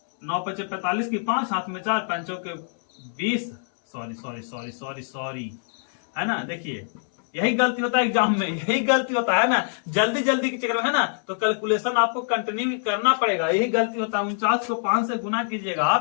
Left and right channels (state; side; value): silent; right; 62 dB below the other